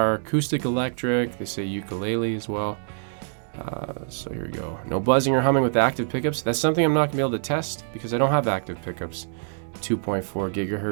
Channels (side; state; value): left; silent; digital silence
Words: acoustic electric. They say ukulele as well. So here we go. No buzzing or humming with active pickups. That's something I'm not gonna be able to test because I don't have active pickups. 2.4